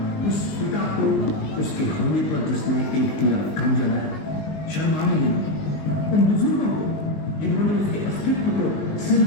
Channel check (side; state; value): right; late; 19 ms